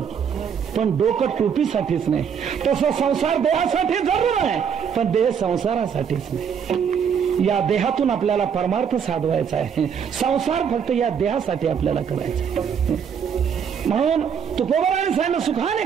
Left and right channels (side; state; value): left; quieter; 7.4 dB